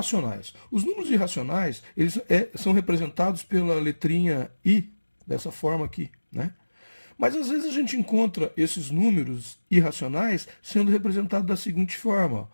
Os números irracionais, eles são representados pela letrinha I, dessa forma aqui, né? Mas às vezes a gente encontra esses números irracionais sendo representados da seguinte forma:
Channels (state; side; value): inverted; both; correlation -1.00